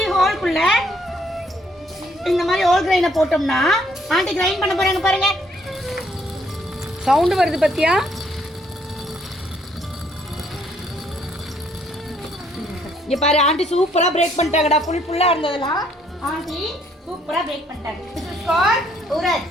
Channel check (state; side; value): normal; both; correlation 0.67